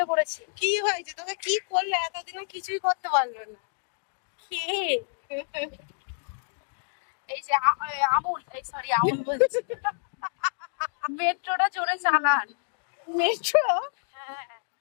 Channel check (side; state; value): right; silent; digital silence